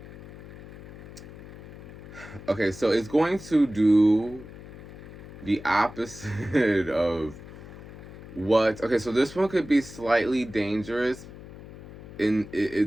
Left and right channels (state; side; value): noise; left; hum, 15 dB below the sound